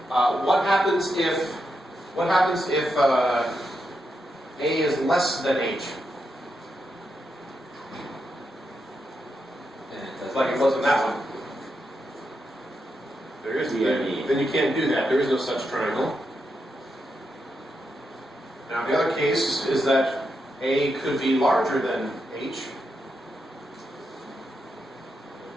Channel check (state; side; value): normal; both; correlation 0.85